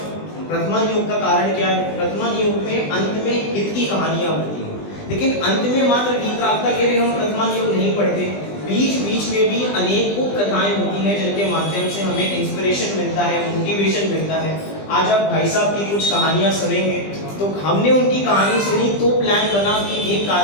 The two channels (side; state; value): right; late; 20 ms